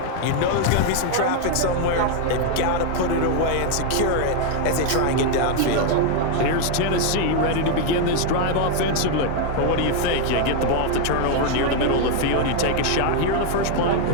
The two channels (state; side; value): different; both; correlation 0.00